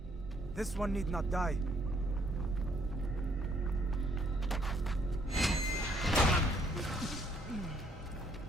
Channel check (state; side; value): normal; both; correlation 0.67